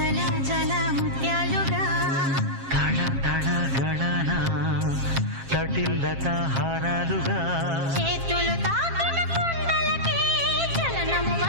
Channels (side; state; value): left; late; 7.5 ms